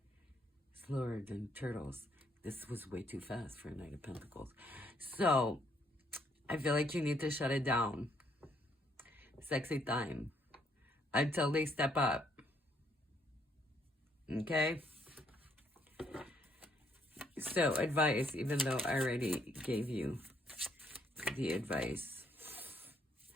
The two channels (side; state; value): both; normal; correlation 0.70